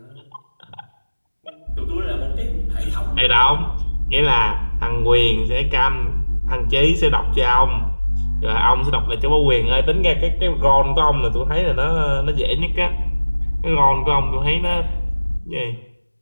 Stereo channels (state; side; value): inverted; both; correlation -1.00